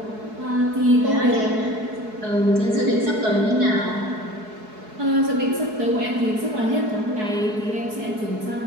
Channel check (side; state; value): left; late; 4.7 ms